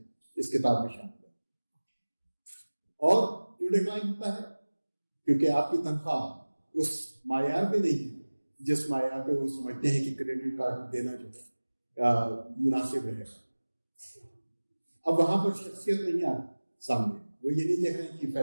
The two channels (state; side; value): inverted; both; correlation -1.00